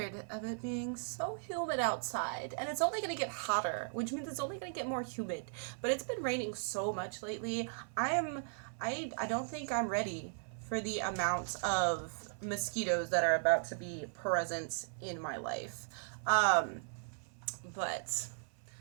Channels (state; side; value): silent; left; 53 dB below the other